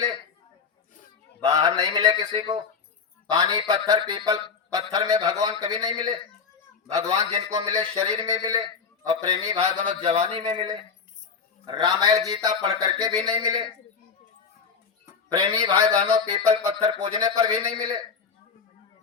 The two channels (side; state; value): right; quieter; 5.7 dB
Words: बाहर नहीं मिले किसी को। पानी पत्थर पीपल पत्थर में भगवान कभी नहीं मिले। भगवान जिनको मिले शरीर में मिले, और प्रेमी भाई बहनों जवानी में मिले। रामायण गीता पढ़ करके भी नहीं मिले। प्रेमी भाई बहनों पीपल पत्थर पूजने पर भी नहीं मिले।